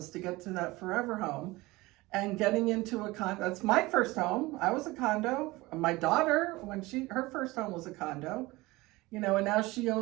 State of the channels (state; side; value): quieter; left; 20.9 dB